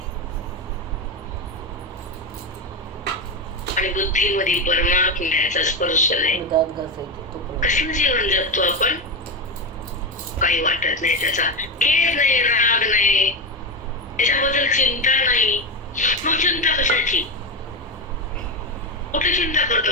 आणि बुद्धीमध्ये परमात्म्याचा स्पर्श नाही. कसलं जीवन जगतो आपण, काही वाटत नाही, त्याचा खेद नाही, राग नाही, त्याच्याबद्दल चिंता नाही. मग चिंता कशाची, कुठे चिंता करतो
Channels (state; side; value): normal; both; correlation 0.14